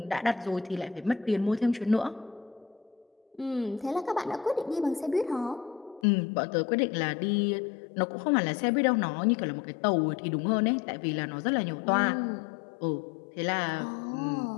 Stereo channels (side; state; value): right; drops out; at 6.0 s